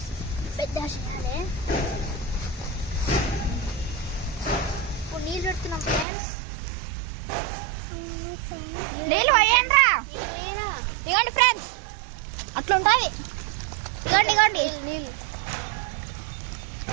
పెద్ద చేయాలి. ఇప్పుడు నీళ్ళు పెడుతున్నాం ఫ్రెండ్స్. నీళ్ళు పోయండి. ఇవ్వండి ఫ్రెండ్స్, అట్లా ఉంటుంది. ఇవ్వండి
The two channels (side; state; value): left; drops out; at 6.1 s